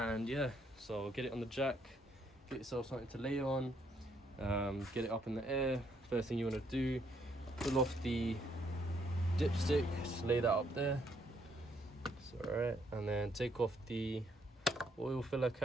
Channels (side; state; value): both; normal; correlation 0.71